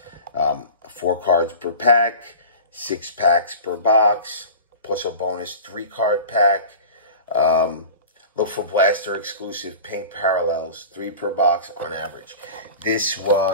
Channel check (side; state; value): both; inverted; correlation -0.35